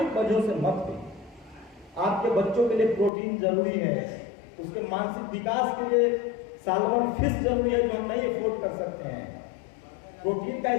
वजहों से मत भी। आपके बच्चों के लिए प्रोटीन जरूरी है, उसके मानसिक विकास के लिए सालमन फिश जरूरी है जो हम नहीं अफोर्ड कर सकते हैं। प्रोटीन का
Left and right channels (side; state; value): right; drops out; at 3.1 s